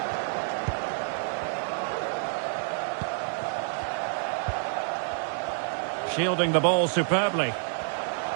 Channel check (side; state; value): left; silent; 59 dB below the other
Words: Shielding the ball superbly.